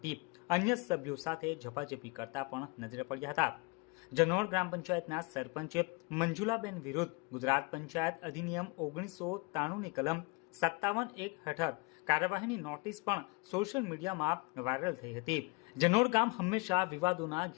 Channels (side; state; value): right; quieter; 27.6 dB